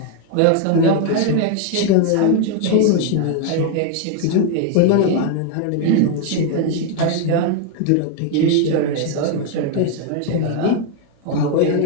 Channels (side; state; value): both; different; correlation 0.00